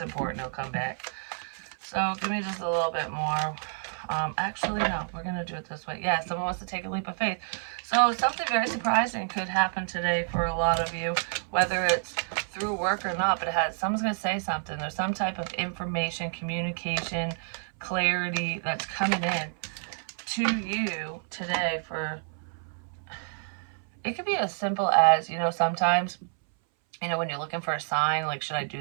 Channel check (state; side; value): silent; left; 59 dB below the other